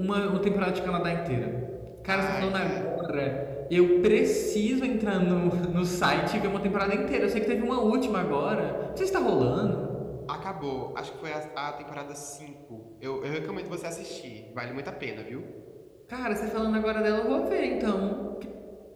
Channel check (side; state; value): both; identical; correlation 1.00